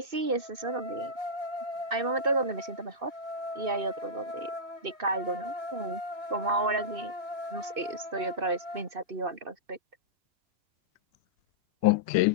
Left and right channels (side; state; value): left; late; 2.6 ms